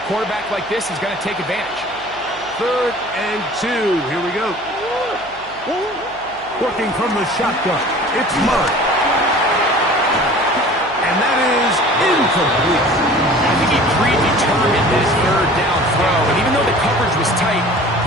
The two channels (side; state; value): right; noise; hum, 25 dB below the sound